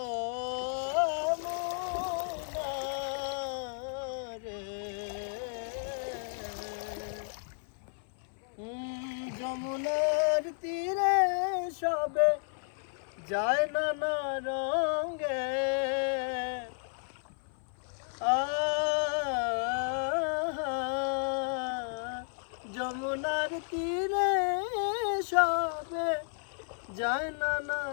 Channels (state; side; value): silent; right; 56 dB below the other